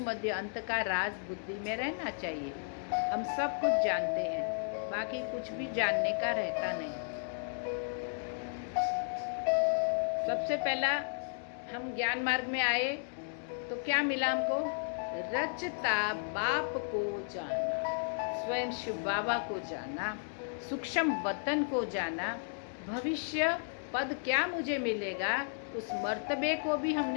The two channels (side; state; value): right; silent; digital silence